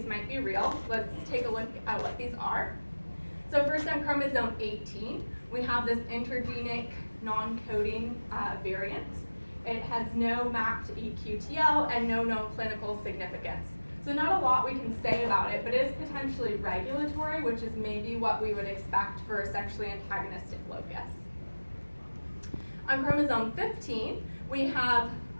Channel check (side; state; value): both; inverted; correlation -1.00